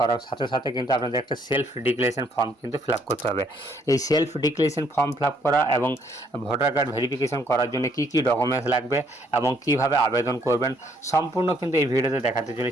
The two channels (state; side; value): normal; both; correlation 0.68